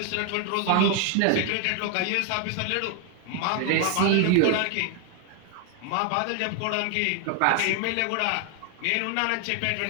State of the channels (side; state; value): both; different; correlation 0.01